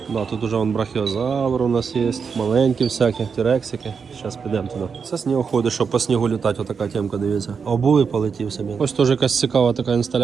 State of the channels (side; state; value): left; quieter; 5.9 dB